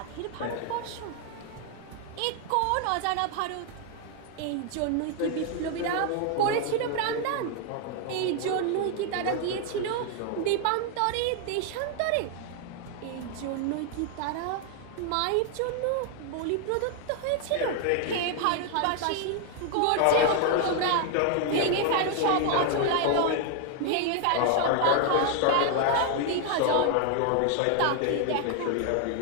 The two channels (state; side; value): different; both; correlation 0.00